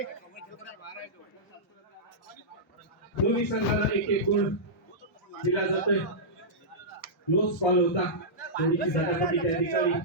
दोन्ही संघाला एक एक गुण दिला जातोय. क्लोज कॉल होता. थोडीशी झटापटी त्या ठिकाणी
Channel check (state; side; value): normal; both; correlation -0.13